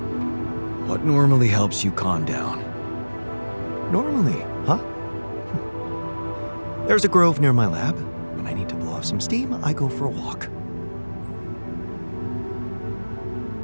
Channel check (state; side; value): inverted; both; correlation -1.00